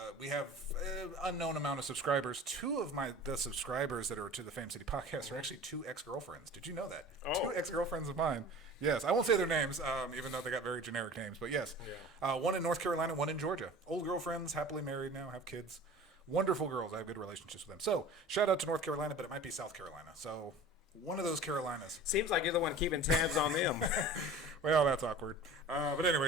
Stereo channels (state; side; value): normal; both; correlation 0.40